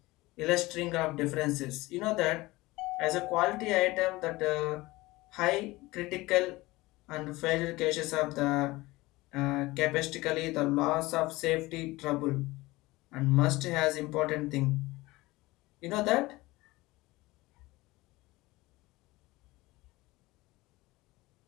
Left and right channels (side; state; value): right; quieter; 20.3 dB